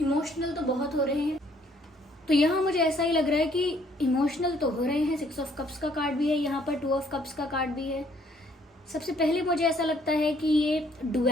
तो बहुत हो रहे हैं। तो यहाँ मुझे ऐसा ही लग रहा है कि इमोशनल तो हो रहे हैं। 6 ऑफ कप्स का कार्ड भी है यहाँ पर, 2 ऑफ कप्स का कार्ड भी है। सबसे पहले मुझे ऐसा लगता है कि ये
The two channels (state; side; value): normal; both; correlation 0.64